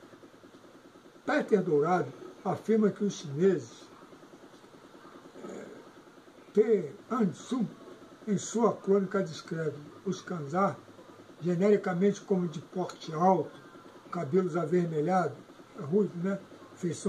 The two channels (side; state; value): both; identical; correlation 1.00